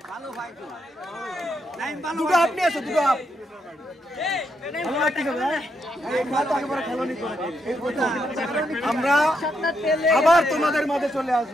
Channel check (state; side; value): normal; both; correlation 0.79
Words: দুটো আপনি আসো, দুটো আপ। আমরা আবার তোমাদের মাঝে চলে